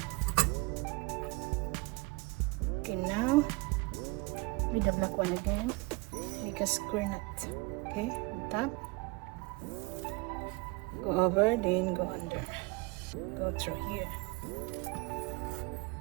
Okay, now with the black one again, make a square knot. Okay, on top, go over, then go under, go through here.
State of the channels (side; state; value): left; quieter; 25.9 dB